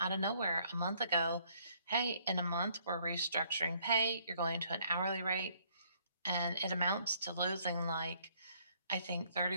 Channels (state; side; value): inverted; both; correlation -0.65